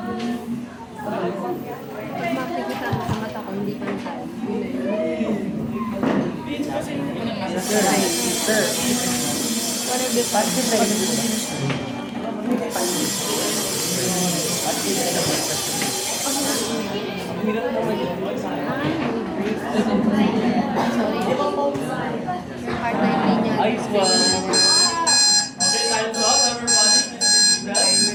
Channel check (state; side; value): identical; both; correlation 1.00